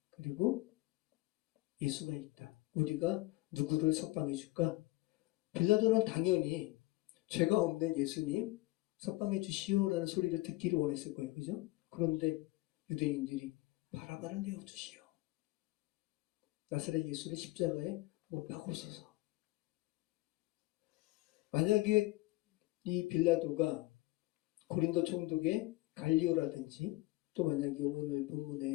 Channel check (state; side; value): quieter; right; 19.5 dB